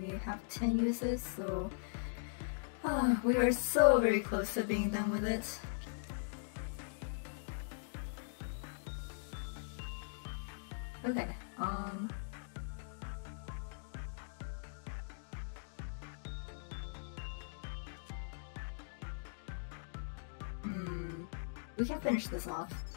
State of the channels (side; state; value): right; silent; digital silence